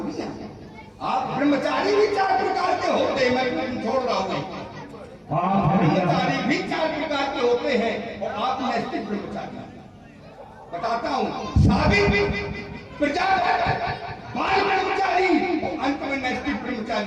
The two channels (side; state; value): both; identical; correlation 1.00